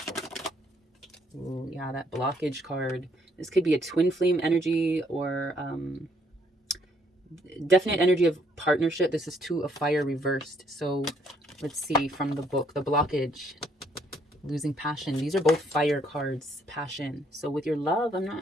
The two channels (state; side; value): normal; both; correlation 0.68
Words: Oh, yeah, that blockage card. This could be a twin flame energy or definite energy of partnership. This is Two of Fire reversed. So let's see from the book, the blockage, losing passion. These are both fire cards, passion. So with your love,